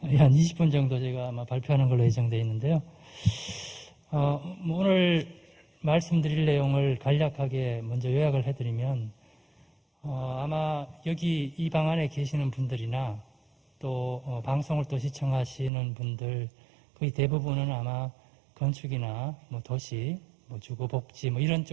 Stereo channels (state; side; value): drops out; left; at 15.7 s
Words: 20분 정도 제가 아마 발표하는 걸로 예정되어 있는데요. 오늘 말씀드릴 내용을 간략하게 먼저 요약을 해드리면, 아마 여기 이 방 안에 계시는 분들이나 또 방송을 또 시청하시는 분들 거의 대부분은 아마 건축이나 뭐 도시, 뭐 주거복지 뭐 이런